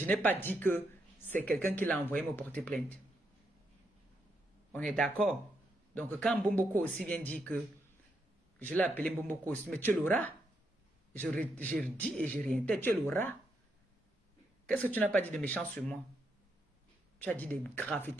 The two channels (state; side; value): normal; both; correlation 0.80